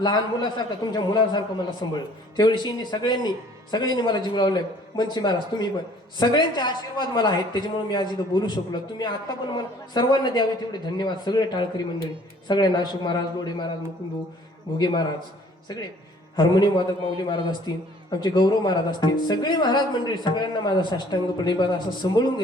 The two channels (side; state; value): both; normal; correlation 0.56